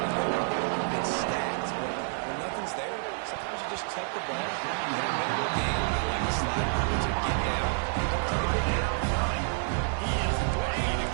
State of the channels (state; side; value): silent; left; 59 dB below the other